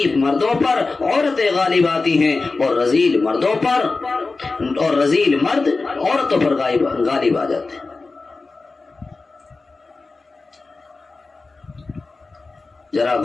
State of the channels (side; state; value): right; quieter; 3.8 dB